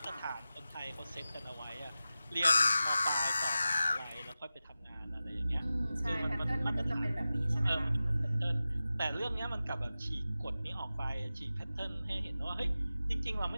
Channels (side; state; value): both; inverted; correlation -0.94